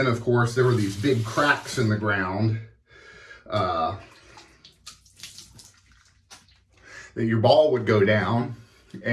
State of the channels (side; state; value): both; identical; correlation 1.00